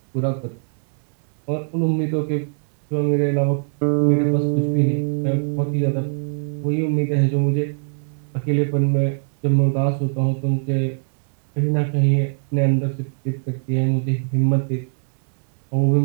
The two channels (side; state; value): left; silent; digital silence